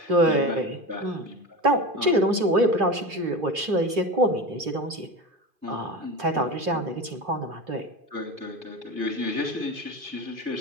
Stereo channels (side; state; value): left; late; 3.0 ms